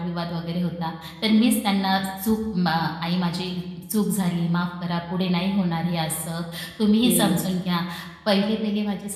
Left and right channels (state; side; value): identical; both; correlation 1.00